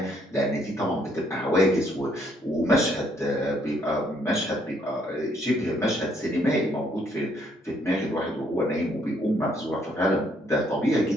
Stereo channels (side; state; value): both; normal; correlation 0.69